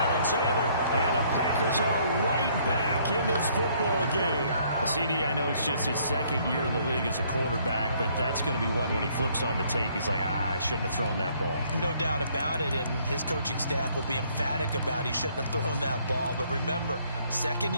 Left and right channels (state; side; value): inverted; both; correlation -0.64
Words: And the Packers are right back in this football game. CD, I know it's just his second year in the league as a quarterback, but that's going to be one when he flips on the tape. He's like, I shouldn't have thrown that ball. No doubt about it, and his coaching staff will be emphatic about he shouldn't have thrown that ball. But remember, second